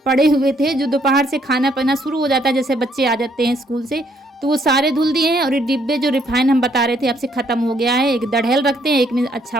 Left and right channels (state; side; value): normal; both; correlation 0.69